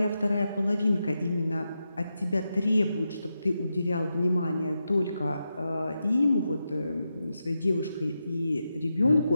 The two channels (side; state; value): both; inverted; correlation -0.88